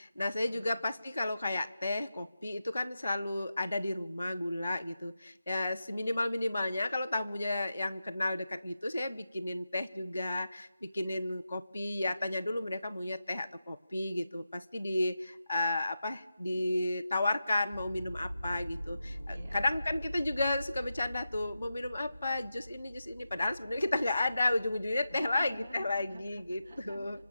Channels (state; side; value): inverted; both; correlation -0.90